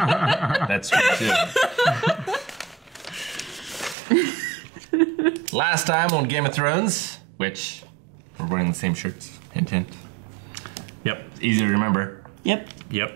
That's true, too. Last time on Game of Thrones, which we're wearing the same shirts. Hint, hint. Yep. Easy to remember. Yep. Yep.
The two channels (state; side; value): drops out; left; at 4.0 s